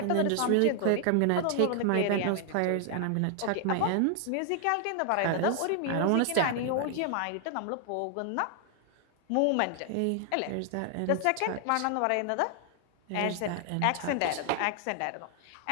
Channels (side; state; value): both; different; correlation 0.00